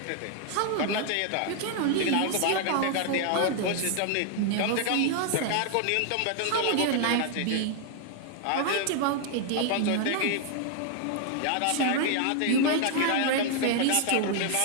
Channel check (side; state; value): both; different; correlation 0.00